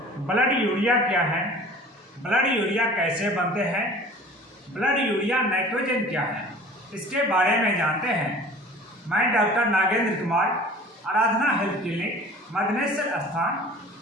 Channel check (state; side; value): normal; both; correlation 0.44